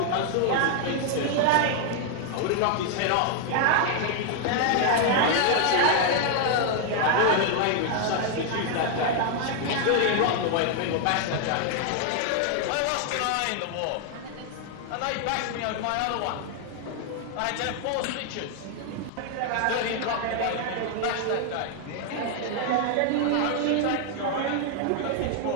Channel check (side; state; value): both; different; correlation 0.00